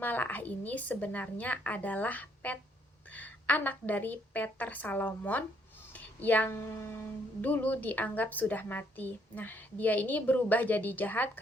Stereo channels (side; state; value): both; normal; correlation 0.69